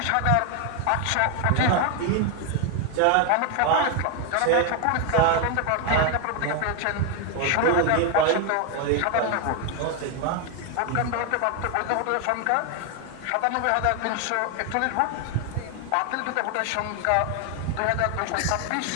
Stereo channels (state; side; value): different; both; correlation 0.01